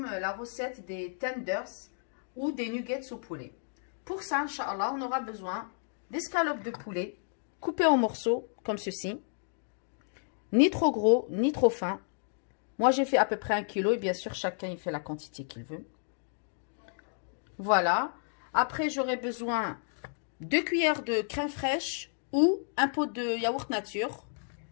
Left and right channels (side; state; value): right; silent; digital silence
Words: la recette des tenders ou des nuggets au poulet. Pour ça, Inch'Allah, on aura besoin d'escalopes de poulet coupées en morceaux comme ceci. Ni trop gros, ni trop fin. Moi, j'ai fait à peu près 1 kg et bien sûr, chacun il fait la quantité qu'il veut. Voilà. Après, j'aurai besoin 2 cuillères de crème fraîche ou un pot de yaourt nature,